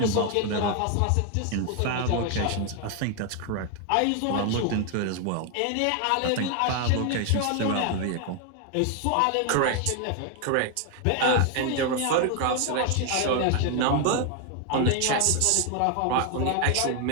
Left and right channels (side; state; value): both; different; correlation 0.01